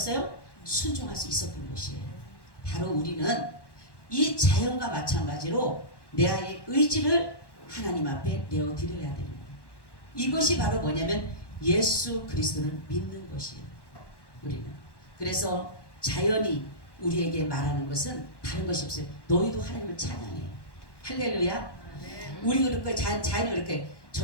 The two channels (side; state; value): right; late; 1.1 ms